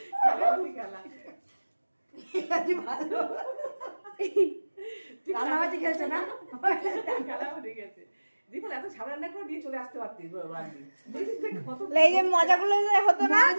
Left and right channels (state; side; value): inverted; both; correlation -1.00